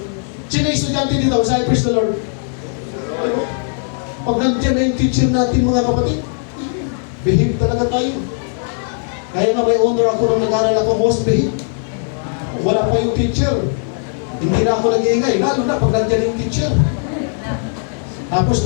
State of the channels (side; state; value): right; silent; 68 dB below the other